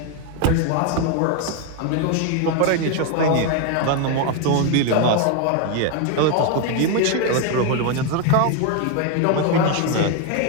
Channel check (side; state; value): both; different; correlation 0.01